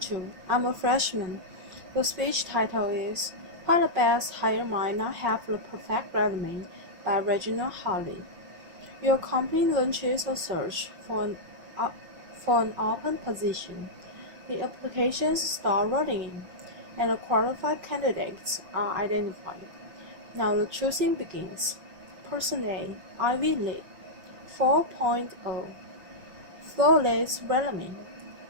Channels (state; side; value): late; left; 5.4 ms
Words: I'm a freshman. The speech title is Why the Best Hire Might Not Have the Perfect Resume by Regina Hartley. Your company launches a search for an open position. The applications start rolling in, and the qualified candidates are identified. Now the choosing begins. Person A, Ivy League, 4.0. Flawless resume,